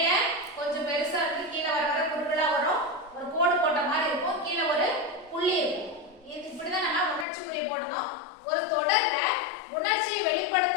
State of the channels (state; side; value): drops out; right; at 7.2 s